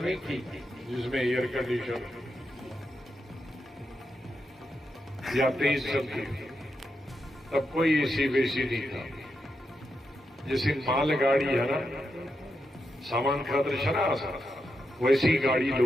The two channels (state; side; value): normal; both; correlation 0.85